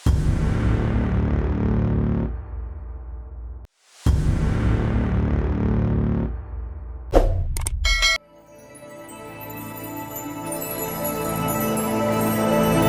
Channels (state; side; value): identical; both; correlation 1.00